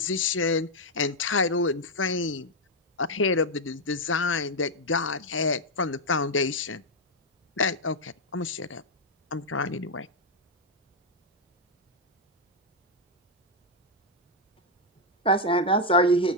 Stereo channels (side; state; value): both; normal; correlation 0.00